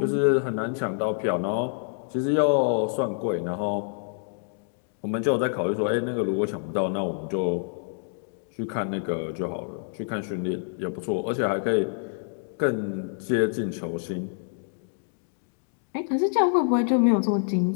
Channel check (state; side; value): silent; right; 60 dB below the other